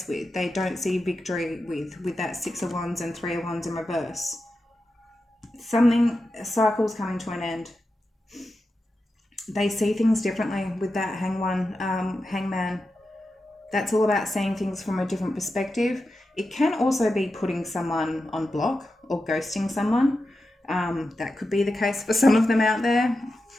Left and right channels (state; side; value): normal; both; correlation 0.90